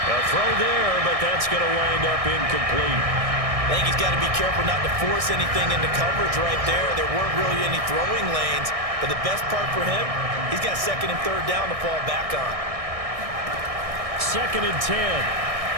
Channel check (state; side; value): late; left; 1.6 ms